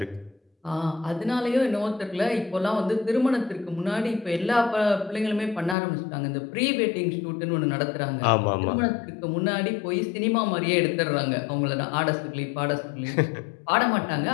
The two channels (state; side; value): drops out; right; at 5.8 s